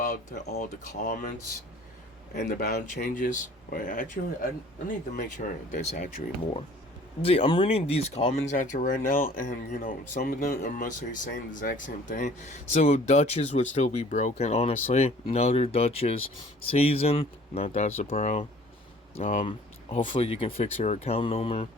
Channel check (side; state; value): both; normal; correlation 0.51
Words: all the comments and the bound changes. Wait, actually, I need to make sure there's actually more. See, I'm reading these comments after right now, and some of them are mostly saying the exact same thing. So Duchess would still be broken, honestly. Another Duchess season, not that surprised. Hopefully you can fix your account number,